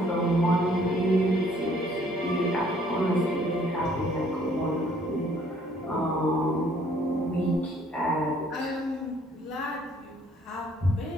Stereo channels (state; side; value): normal; both; correlation 0.61